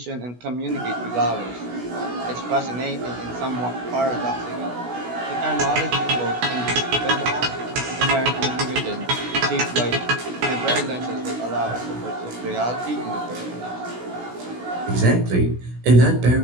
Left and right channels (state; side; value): late; left; 16 ms